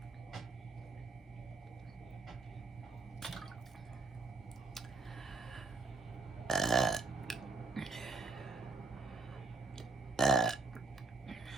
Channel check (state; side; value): quieter; left; 3.9 dB